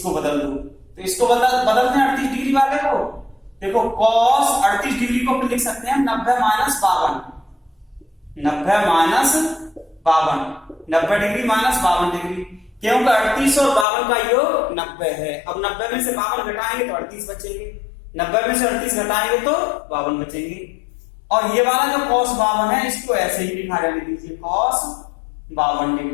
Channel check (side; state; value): right; drops out; at 13.9 s